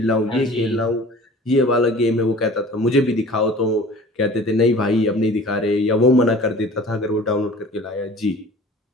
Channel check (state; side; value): normal; both; correlation 0.44